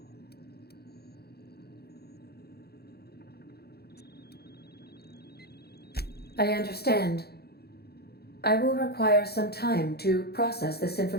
I understand. I will require some time to process this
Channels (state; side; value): late; right; 0.46 ms